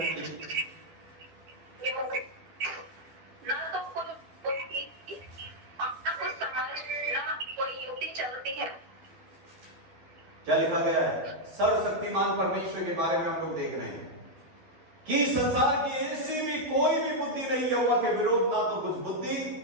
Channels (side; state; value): left; late; 11 ms